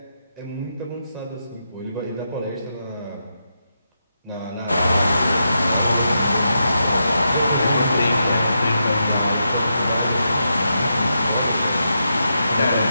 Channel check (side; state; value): both; inverted; correlation -0.84